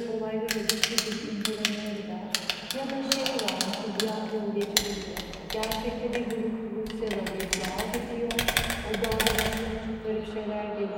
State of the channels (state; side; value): identical; both; correlation 1.00